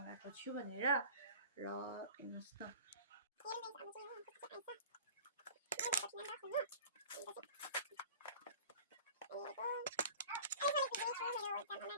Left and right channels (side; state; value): both; inverted; correlation -0.41